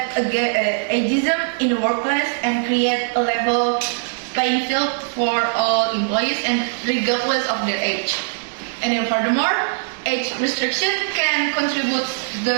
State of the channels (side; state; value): left; silent; 65 dB below the other